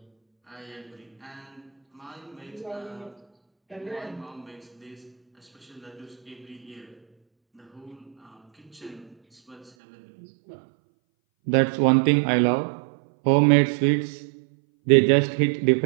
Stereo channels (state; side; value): drops out; left; at 9.7 s